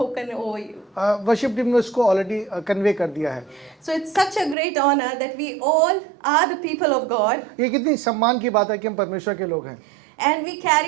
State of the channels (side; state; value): left; drops out; at 4.5 s